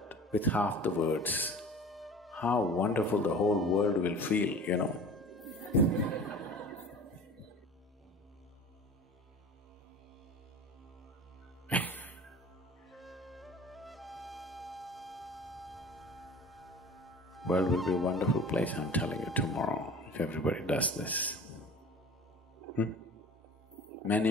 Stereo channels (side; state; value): both; normal; correlation 0.40